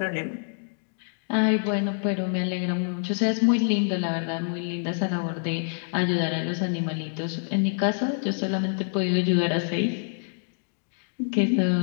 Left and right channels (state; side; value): silent; right; digital silence